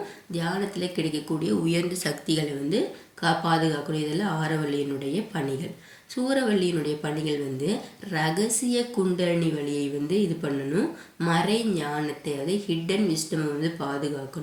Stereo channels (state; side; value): identical; both; correlation 1.00